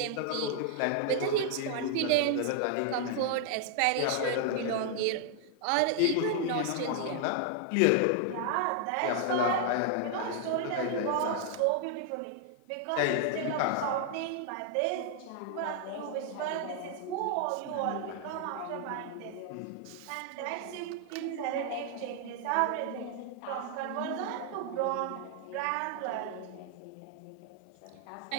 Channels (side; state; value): both; different; correlation 0.00